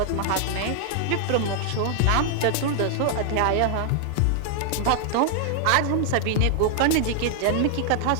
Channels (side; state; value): both; different; correlation 0.00